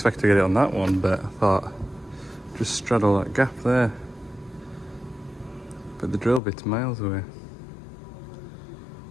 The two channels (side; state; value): right; drops out; at 6.4 s